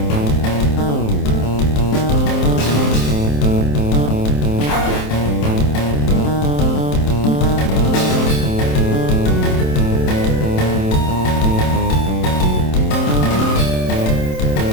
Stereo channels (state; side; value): late; right; 27 ms